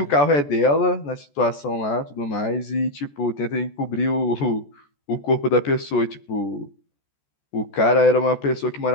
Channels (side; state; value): right; late; 14 ms